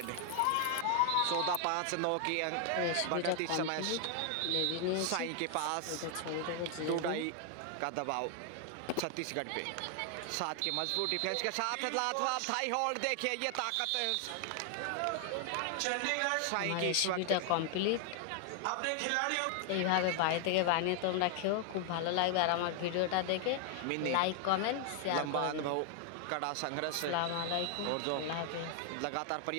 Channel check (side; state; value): both; different; correlation 0.00